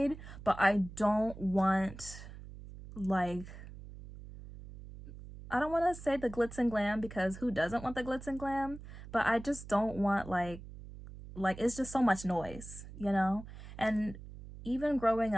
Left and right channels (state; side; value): noise; right; hum, 14 dB below the sound